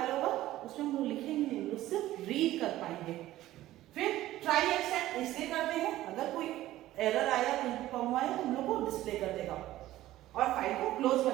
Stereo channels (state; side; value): quieter; left; 15.1 dB